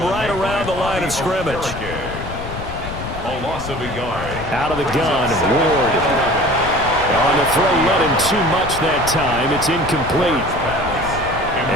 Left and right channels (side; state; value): left; noise; rumble, 9 dB below the sound